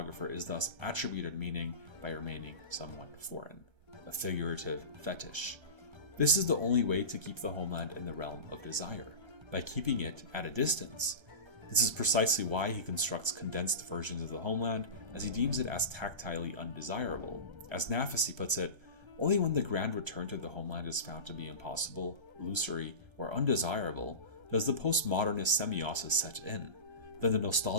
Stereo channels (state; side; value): late; left; 1.3 ms